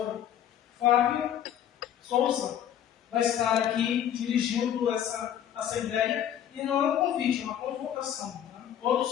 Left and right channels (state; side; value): quieter; right; 10.2 dB